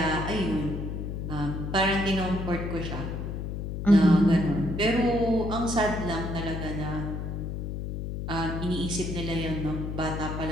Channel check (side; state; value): left; noise; hum, 4 dB below the sound